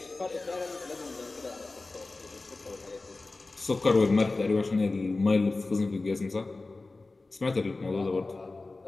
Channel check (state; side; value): quieter; right; 3.4 dB